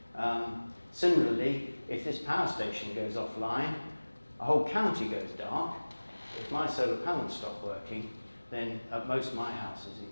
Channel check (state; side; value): inverted; both; correlation -1.00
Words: Similarly, if this power station goes offline, a whole county goes dark. If my solar panels stop working, then at most my house is